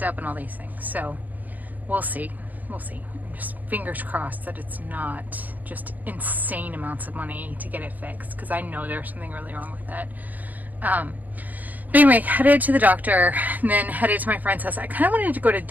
up and all these things. So we'll see. We'll see. Just fingers crossed that it's not just insane amounts of money to get it fixed, because I know there's something really wrong with it. But anyway, headed to the doctor and then headed to my friend's house. I kind of wanted to go to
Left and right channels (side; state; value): left; late; 0.082 ms